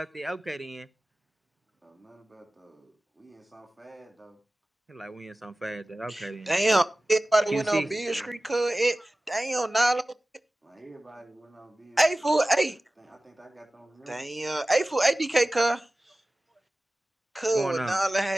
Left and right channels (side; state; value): both; normal; correlation 0.97